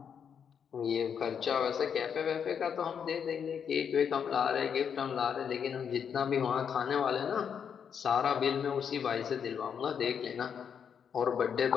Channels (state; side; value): quieter; right; 7.5 dB